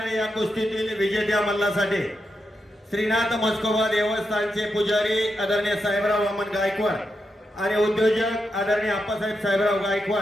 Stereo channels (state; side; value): normal; both; correlation 0.85